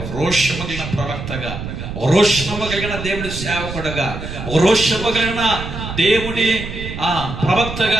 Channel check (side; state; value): right; noise; rumble, 8 dB below the sound